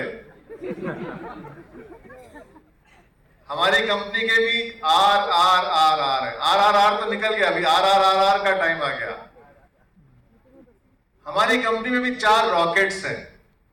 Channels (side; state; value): both; identical; correlation 1.00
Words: हमारी कंपनी के भी आर आर आर आर है। आर आर आर तो निकल गया, अभी आर आर आर आर का टाइम आ गया। हमारी कंपनी में भी 4 रॉकेट्स हैं